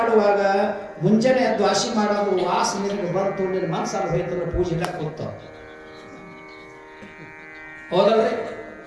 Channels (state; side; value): identical; both; correlation 1.00